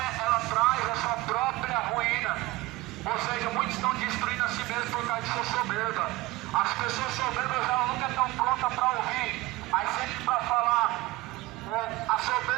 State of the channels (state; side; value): quieter; left; 19.5 dB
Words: ela traz a sua própria ruína. Ou seja, muitos estão destruindo a si mesmos por causa de sua soberba. As pessoas soberbas elas nunca estão prontas para ouvir, mas sempre para falar. A